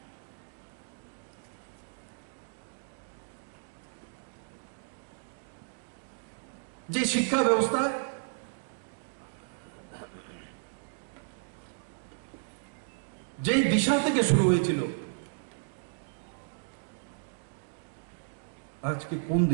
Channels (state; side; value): silent; left; digital silence